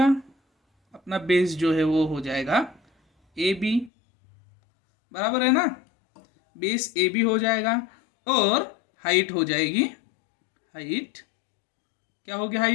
अपना बेस जो है वो हो जाएगा ए बी, बराबर है ना। बेस ए बी हो जाएगा और हाइट हो जाएगी, हाइट क्या होगी,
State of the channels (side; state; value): right; drops out; at 3.9 s